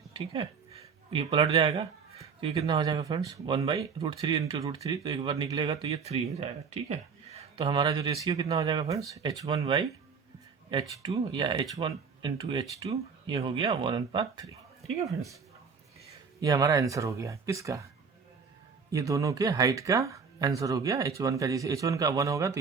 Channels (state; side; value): quieter; left; 5.7 dB